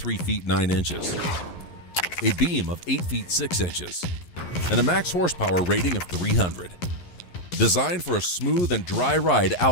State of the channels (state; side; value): late; right; 11 ms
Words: feet 9 inches, a beam of 8 feet 6 inches, and a max horsepower rating of 300. Designed for a smooth and dry ride